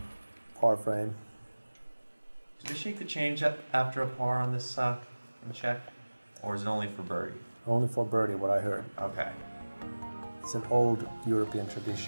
Par frame. Did they shake the change after a par on this check? Or is it only for birdie? Only for birdie, what I heard. Okay. It's an old European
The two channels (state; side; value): inverted; both; correlation -1.00